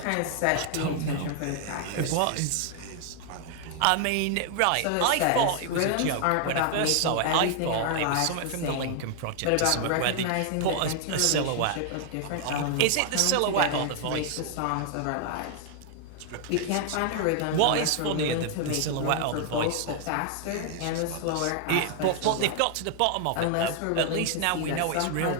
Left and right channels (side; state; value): both; different; correlation 0.00